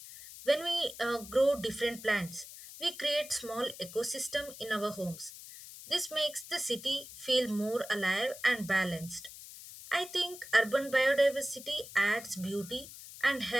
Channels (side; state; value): left; noise; hiss, 15 dB below the sound